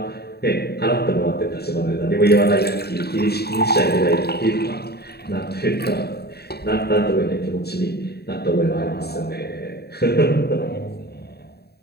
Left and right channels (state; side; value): late; right; 0.47 ms